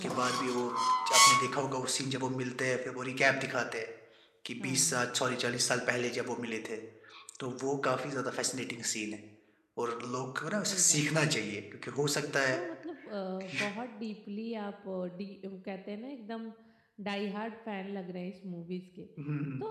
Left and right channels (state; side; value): identical; both; correlation 1.00